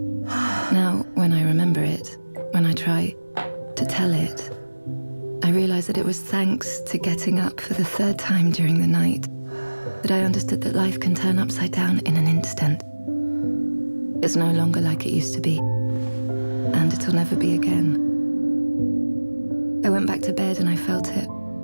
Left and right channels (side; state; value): both; inverted; correlation -1.00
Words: Now, when I remember it, when I try to tell it, I realize that it was thanks to getting up for the third time during the night that I understood that life can turn upside down in an instant. It's no longer like it used to be, and it'll never be again. I went back to bed and I felt it.